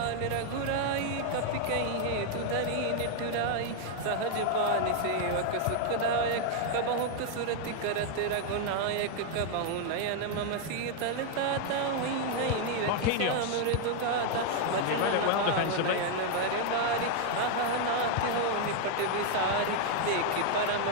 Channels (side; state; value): both; different; correlation 0.00